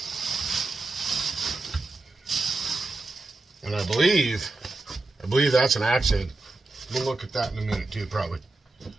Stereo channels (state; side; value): quieter; left; 3.2 dB